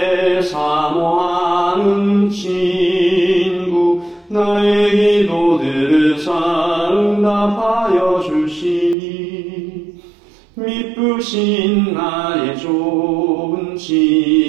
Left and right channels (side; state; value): left; drops out; at 9.0 s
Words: 사모하는 친구, 나의 기도들을 응답하여 주시니 미쁘신 나의 좋은